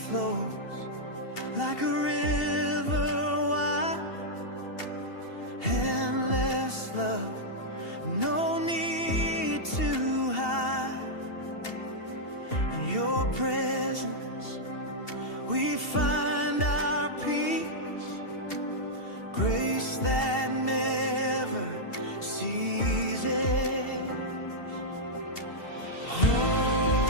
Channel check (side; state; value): right; late; 2.7 ms